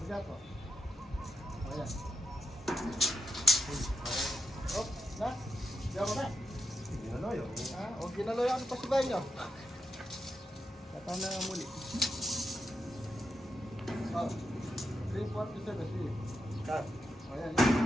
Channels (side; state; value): both; normal; correlation 0.84